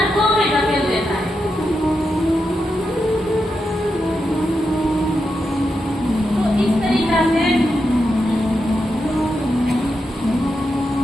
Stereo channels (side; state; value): both; normal; correlation 0.86